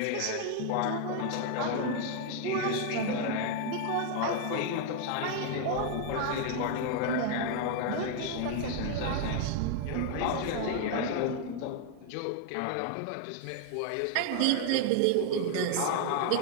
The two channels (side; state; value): both; different; correlation 0.00